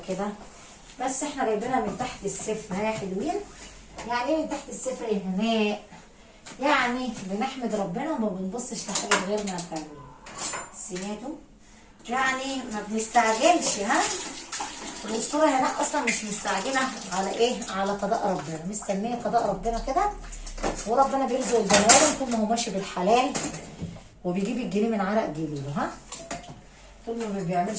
كده، بس احنا جايبينها من تحت الصفر يا حلوين. يعني ايه من تحت الصفر يا هناء؟ يعني بنحمد ربنا وما بنبصش لحاجه غيرنا يا حلوين. سمعتوا؟ يعني ما بنستعجلش. الاسطوره هناء اصلا مش مستعجله على ايه؟ على قضاء ربنا، مستنيه قضاء ربنا كده، وربنا بيرزق البني ادم طول ما هو ماشي بالحلال وبيجيب الجنيه من عرق جبينه. طول ما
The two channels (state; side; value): identical; both; correlation 1.00